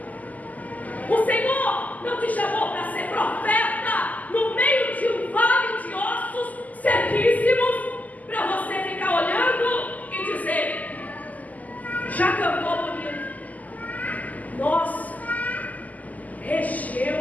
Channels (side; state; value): right; late; 0.078 ms